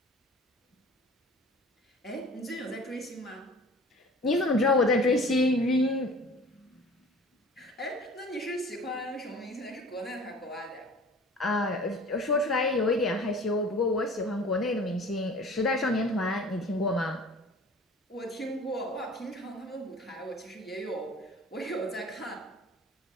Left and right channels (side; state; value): both; normal; correlation 0.44